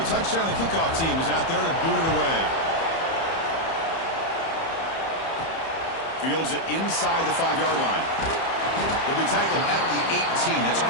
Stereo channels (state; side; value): late; right; 30 ms